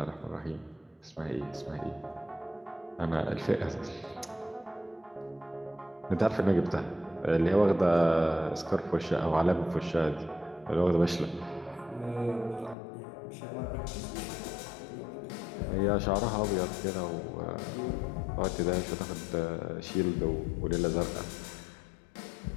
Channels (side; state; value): right; drops out; at 12.8 s